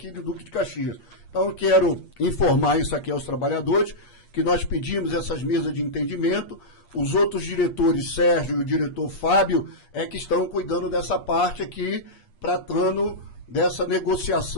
de Duque de Caxias. Então eu quero informar isso aqui aos trabalhadores, que nós pedimos essas mesas de entendimento, os outros diretores, Sérgio e o diretor Fábio, que estão cuidando dessa parte aqui, tratando dessa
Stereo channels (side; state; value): right; late; 8.4 ms